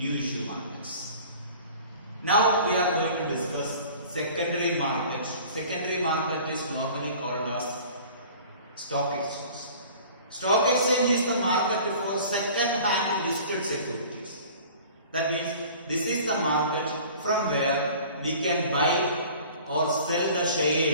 markets. Now we are going to discuss secondary market. Secondary market is normally called as stock exchange. Stock exchange is the market for second-hand listed securities. That means this is the market from where we can buy or sell the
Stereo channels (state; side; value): inverted; both; correlation -0.45